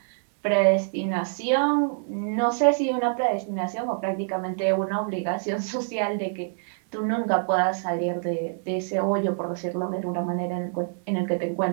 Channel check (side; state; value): left; silent; 61 dB below the other